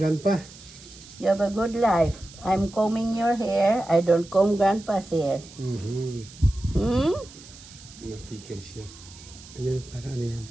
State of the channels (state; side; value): noise; right; hiss, 19 dB below the sound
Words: You have a good life. I'm combing your hair. I don't comb grandpa's hair. Hmm? Natikil siya. Ayun, para ano yan?